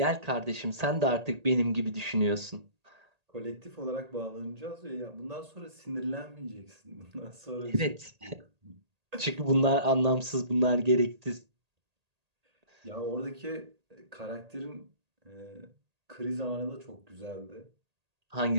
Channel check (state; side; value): late; left; 1.8 ms